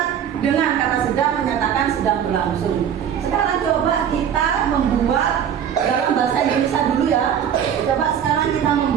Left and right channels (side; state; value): left; quieter; 8.8 dB